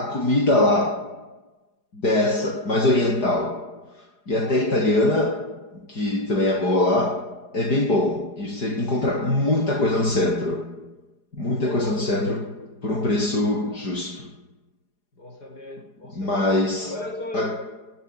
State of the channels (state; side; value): late; right; 4.9 ms